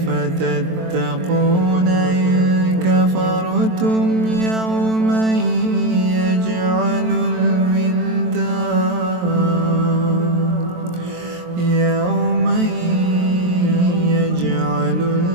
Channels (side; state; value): left; late; 23 ms